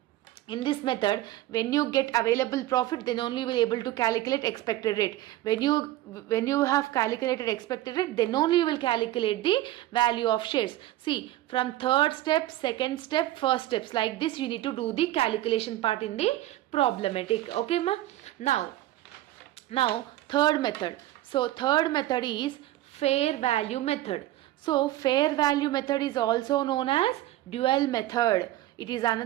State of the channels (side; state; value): left; quieter; 15.1 dB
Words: In this method, when you get available profit, then only you will be able to calculate expected rate. When you have calculated expected rate, then only you will calculate the value of shares. See, from third step, second step, first steps, like this you need to do the calculation part in the problematic. Okay ma? Now third method. So third method is fair value method. So fair value method is also known as dual method. It is